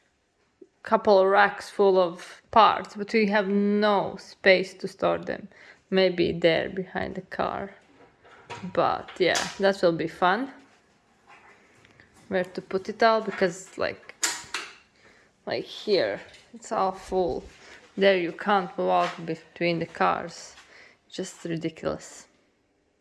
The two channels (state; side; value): identical; both; correlation 1.00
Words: a couple of racks full of parts, but we have no space to store them. Maybe there behind the car. But yeah, that will be fun. Where to put it all, because like here, it's all full. There you can't walk between the cars. Just ridiculous.